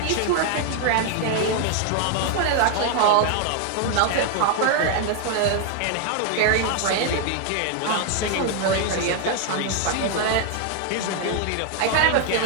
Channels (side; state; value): both; different; correlation 0.00